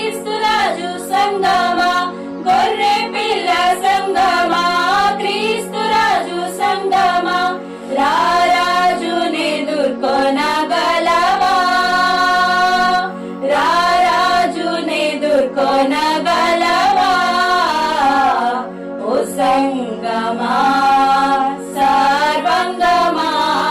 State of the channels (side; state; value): both; identical; correlation 1.00